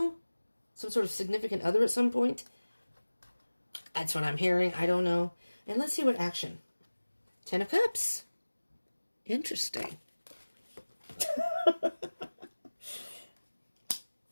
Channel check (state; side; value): inverted; both; correlation -1.00